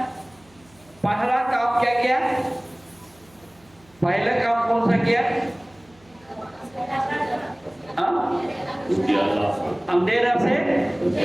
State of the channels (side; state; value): right; noise; hum, 29 dB below the sound